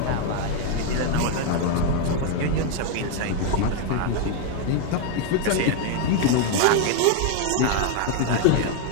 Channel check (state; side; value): different; both; correlation 0.00